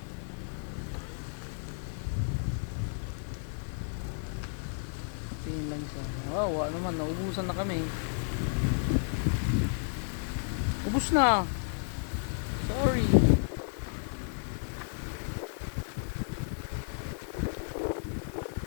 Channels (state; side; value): silent; right; 56 dB below the other